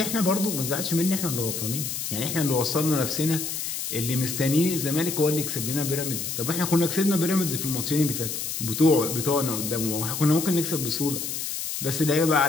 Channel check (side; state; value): left; noise; hiss, 4 dB below the sound